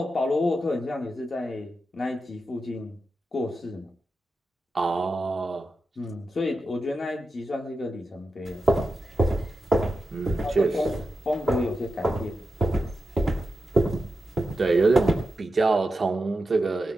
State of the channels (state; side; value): normal; both; correlation 0.89